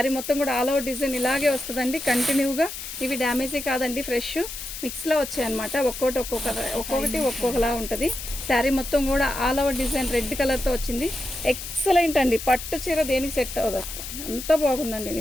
మొత్తం కూడా ఆల్ ఓవర్ డిజైన్ ఇలాగే వస్తుందండి కంటిన్యూగా. ఇవి డ్యామేజీ కాదండి, ఫ్రెష్ మిక్స్లో వచ్చాయన్నమాట. ఒక్కొక్కటి ఒక్కొక్కలా ఉంటుంది. శారీ మొత్తం కూడా ఆల్ ఓవర్ డిజైన్ రెడ్ కలర్తో వచ్చింది. ఎక్సలెంట్ అండి. పట్టు చీర దేనికి సెట్ అవ్వదు, అంత బాగుందండి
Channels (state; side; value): noise; left; hiss, 9 dB below the sound